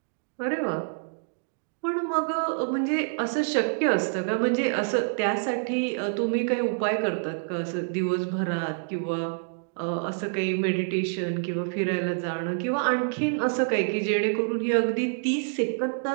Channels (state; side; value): silent; left; digital silence